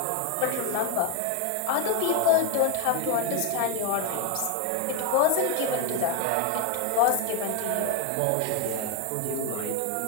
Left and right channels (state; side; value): different; both; correlation 0.01